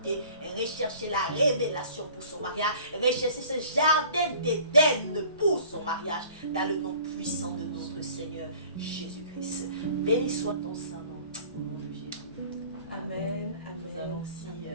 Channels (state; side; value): inverted; both; correlation -0.48